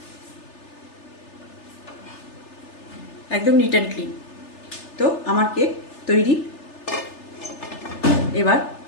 একদম নিট অ্যান্ড ক্লিন। তো আমার কেক তৈরি। এবার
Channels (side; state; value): right; late; 3.3 ms